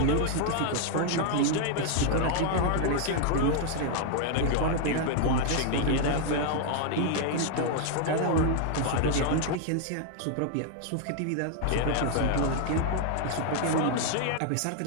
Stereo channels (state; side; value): different; both; correlation 0.00